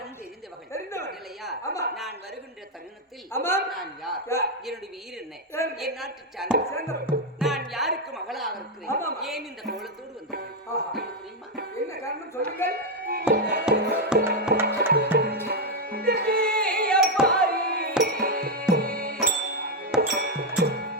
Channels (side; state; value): both; normal; correlation 0.02